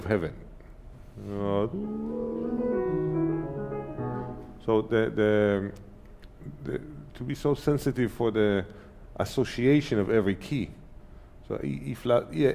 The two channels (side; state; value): both; identical; correlation 1.00